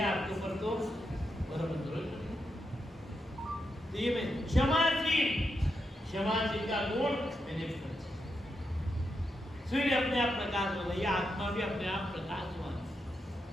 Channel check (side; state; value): both; normal; correlation 0.85